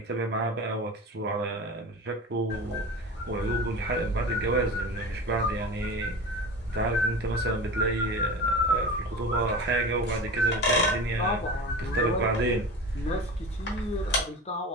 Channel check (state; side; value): normal; both; correlation 0.32